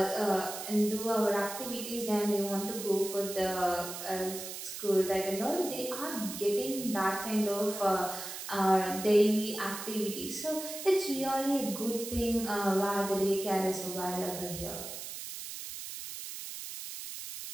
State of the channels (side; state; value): right; noise; hiss, 8 dB below the sound